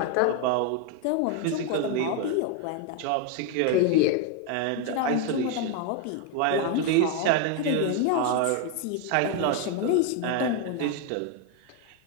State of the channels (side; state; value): both; different; correlation 0.01